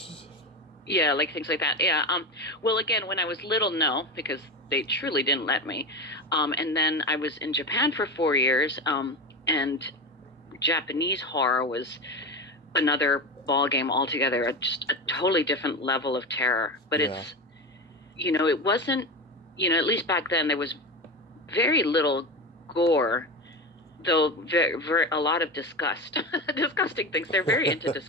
Yeah, like things like that. Yeah. Well, again, when I was little, no, because they truly didn't let me. And then I was in Japan for 4 years. And Japanese horror was another ball game altogether, just a totally different level of terror. But it's, it wasn't, at least back then there was very little gore, though a lot of disgusting things. They're very into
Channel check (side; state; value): both; normal; correlation 0.21